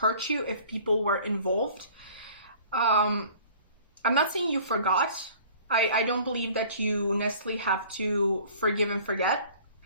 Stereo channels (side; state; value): both; inverted; correlation -0.49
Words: you if people were involved. I'm not saying you forgot. I don't believe that you necessarily have to forgive and forget.